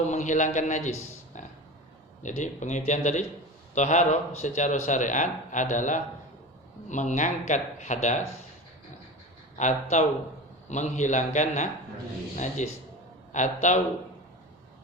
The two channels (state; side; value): normal; both; correlation 0.29